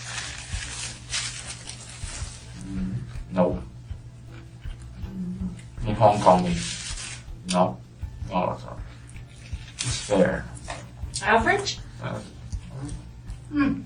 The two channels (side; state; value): both; identical; correlation 1.00